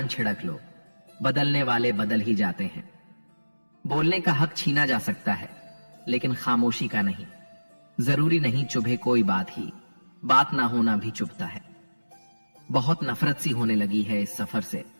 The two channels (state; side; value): inverted; both; correlation -1.00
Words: छिड़क लो, बदलने वाले बदल ही जाते हैं। बोलने का हक छीना जा सकता है, लेकिन खामोशी का नहीं। जरूरी नहीं चुभे कोई बात ही, बात ना होना भी चुभता है। बहुत नफरत सी होने लगी है इस सफर से,